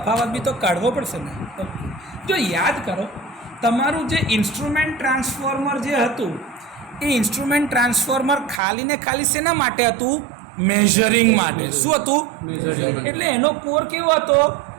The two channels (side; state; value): left; drops out; at 8.6 s